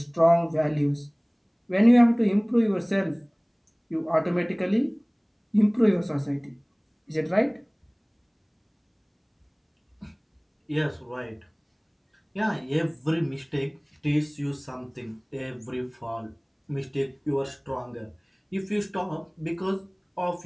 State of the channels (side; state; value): both; identical; correlation 1.00